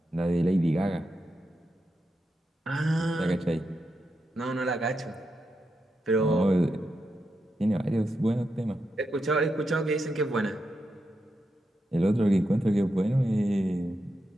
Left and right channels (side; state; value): both; normal; correlation 0.86